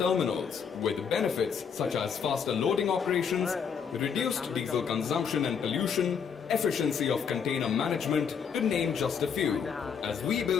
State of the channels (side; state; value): right; quieter; 6.8 dB